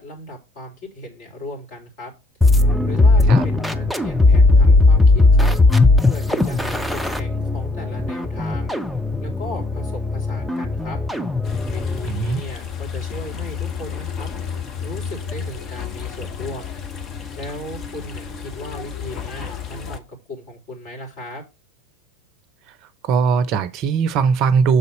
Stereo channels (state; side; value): normal; both; correlation 0.68